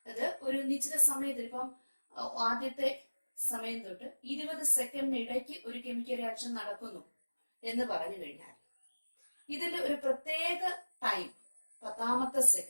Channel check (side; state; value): both; inverted; correlation -1.00